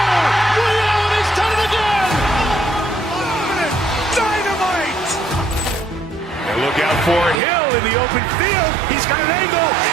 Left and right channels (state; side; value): drops out; left; at 7.4 s